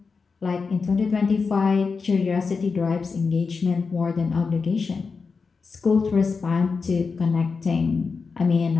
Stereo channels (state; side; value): quieter; right; 4.9 dB